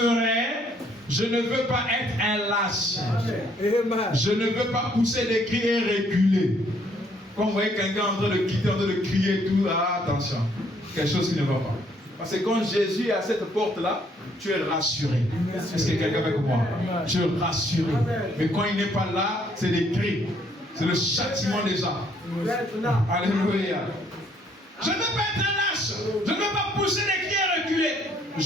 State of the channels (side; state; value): both; normal; correlation 0.66